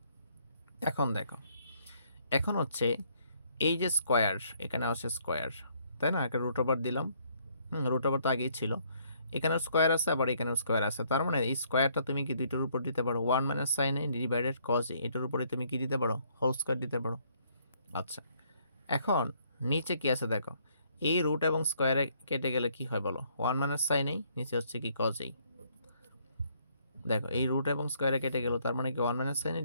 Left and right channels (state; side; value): inverted; both; correlation -0.68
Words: এখন দেখো, এখন হচ্ছে এই যে স্কোয়ার, এখানে আছে স্কোয়ার, তাই না, একটা রুট ওভার দিলাম, রুট ওভার তো আগেই ছিল, এখানেও স্কোয়ার আছে আবার এখানেও স্কোয়ার আছে, তার মানে এই স্কোয়ারটা তুমি কি দুইটার উপর দিতে পারো, 1 মাইনাস সাইন এ ডিভাইডেড কজ এ, এটার উপরে তুমি কি দিতে পারো, হোল স্কোয়ার দিতে পারো। আচ্ছা, এখন নিচে কি আছে দেখো, এই রুট এবং স্কোয়ারে কেটে গেলে কি হয় বলো, 1 মাইনাস সাইন এই, নিচে হচ্ছে কি কজ এই। দেখো এই রুট এবং স্কোয়ারে কেটে গেল, তার মানে কি 1 মাইনাস সাইন এ